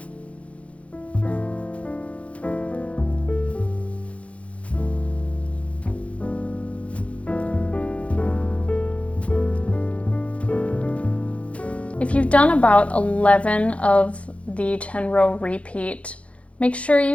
If you've done about 11 of the 10-row repeat, make sure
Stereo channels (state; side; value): late; right; 0.063 ms